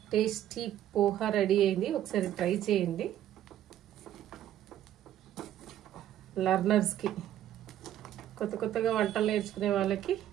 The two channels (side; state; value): left; quieter; 11.9 dB